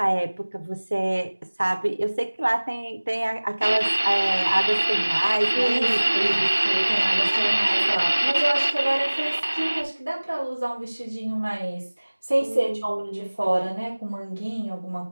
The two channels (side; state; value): both; inverted; correlation -1.00